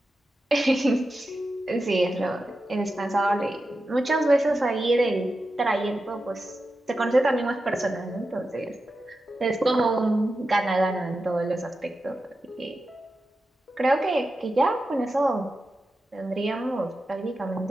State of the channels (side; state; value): both; normal; correlation 0.91